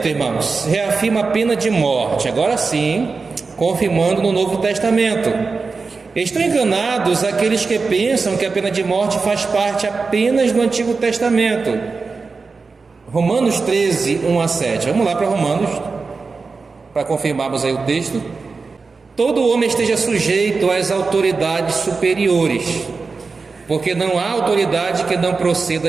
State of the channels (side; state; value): left; quieter; 4.4 dB